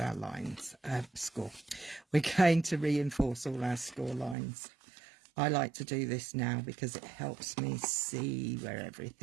our lines. We're going to reinforce all our score lines. I like to do this now because it helps me see where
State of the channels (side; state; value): left; drops out; at 4.4 s